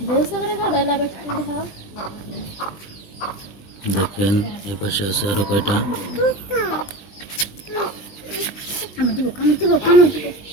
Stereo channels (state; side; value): late; right; 19 ms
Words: দেখেন এ পাশে আছে আরো কয়টা।